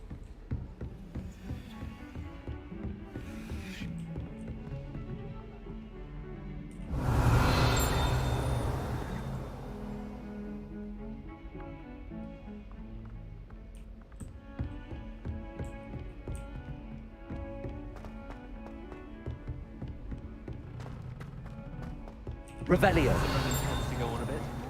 Revelio. Roman tends to go on a bit.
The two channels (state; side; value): identical; both; correlation 1.00